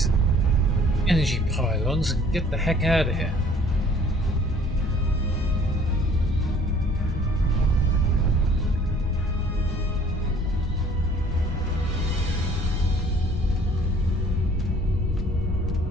energy pylons and get the heck out of here.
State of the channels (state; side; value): noise; left; rumble, 5 dB below the sound